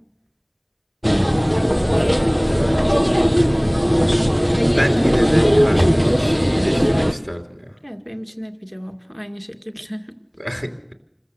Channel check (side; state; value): both; identical; correlation 1.00